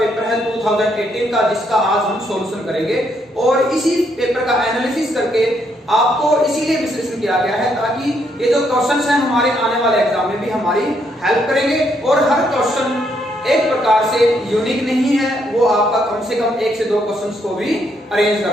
है 2018 का, जिसका आज हम सॉल्यूशन करेंगे। और इसी पेपर का एनालिसिस करके आपको इसीलिए विश्लेषण किया गया है ताकि ये जो क्वेश्चंस हैं हमारे आने वाले एग्जाम में भी हमारी हेल्प करेंगे। और हर क्वेश्चन एक प्रकार से यूनिक नहीं है, वो आपका कम से कम 1 से 2 क्वेश्चंस को भी अरेंज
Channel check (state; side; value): normal; both; correlation 0.74